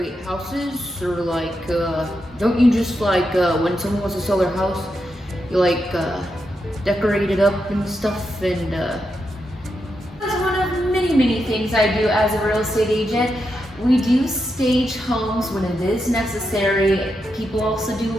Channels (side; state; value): both; normal; correlation 0.85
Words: houses, or like don't you just like when someone wants to sell their house, you like decorate it up and stuff? And that's one of many things I do as a real estate agent. We do stage homes when it is necessary. People also do